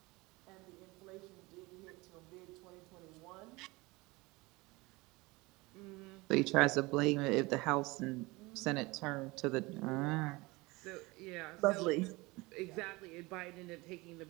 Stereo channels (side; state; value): left; quieter; 23.1 dB